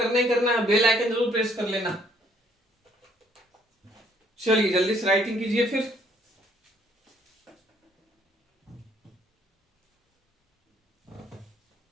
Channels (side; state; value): both; normal; correlation 0.64